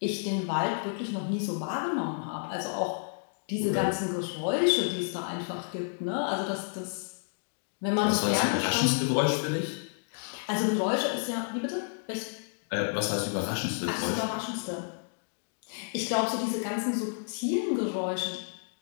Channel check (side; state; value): right; silent; digital silence